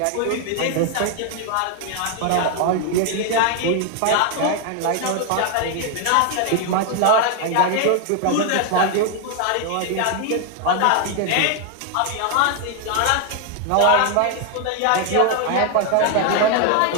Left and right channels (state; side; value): different; both; correlation 0.00